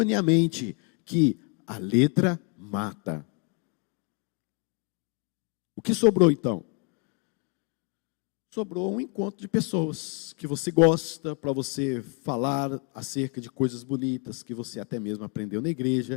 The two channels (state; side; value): quieter; right; 34.2 dB